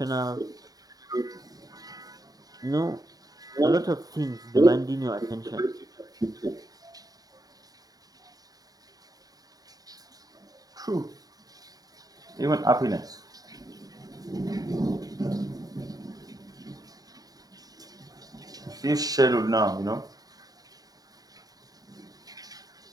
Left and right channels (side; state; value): left; late; 0.18 ms